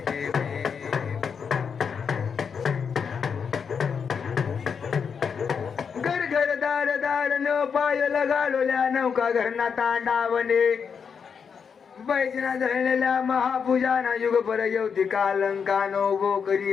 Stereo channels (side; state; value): right; quieter; 6.4 dB